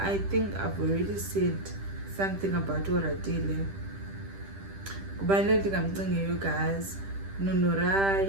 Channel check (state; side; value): late; left; 10 ms